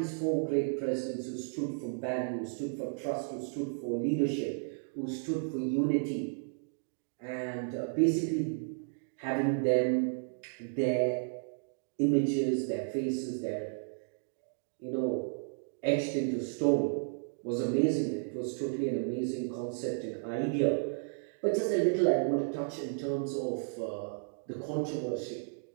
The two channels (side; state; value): left; silent; digital silence